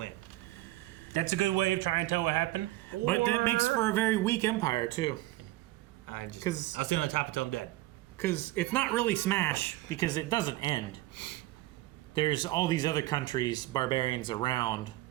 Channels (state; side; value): quieter; left; 17.6 dB